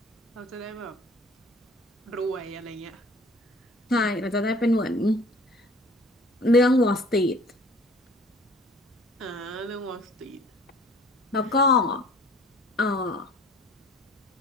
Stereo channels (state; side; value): normal; both; correlation 0.51